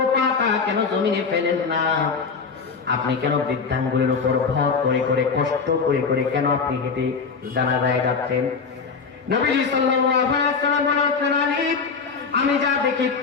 পাটা কেন জমিনে ফেলেন না? আপনি কেন বৃদ্ধাঙ্গুলের উপর ভর করে করে কষ্ট করে করে কেন আপনি হেঁটে জানাজায় যাচ্ছেন? নবীজি সাল্লাল্লাহু আলাইহি ওয়াসাল্লাম বলেন, আলী আমি যা দেখি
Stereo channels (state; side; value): quieter; right; 5.3 dB